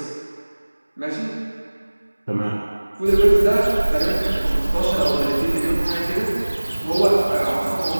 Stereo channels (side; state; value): both; inverted; correlation -1.00